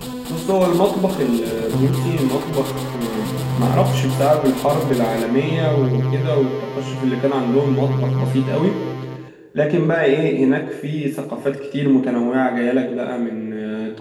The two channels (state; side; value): identical; both; correlation 1.00